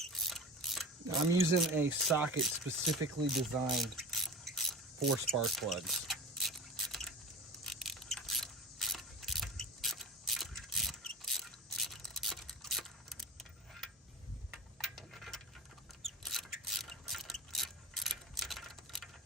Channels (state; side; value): normal; both; correlation 0.34